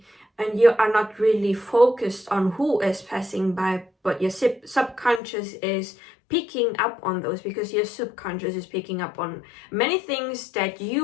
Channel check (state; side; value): drops out; right; at 5.2 s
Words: and you are not really focused on who is passing by, but your subconscious is picking up on those, because your subconscious is picking up on many things that